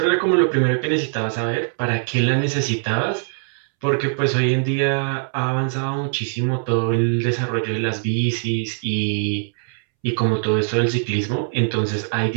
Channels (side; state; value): left; silent; 65 dB below the other